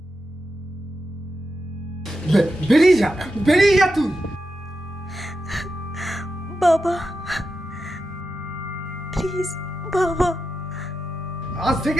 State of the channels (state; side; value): normal; both; correlation 0.89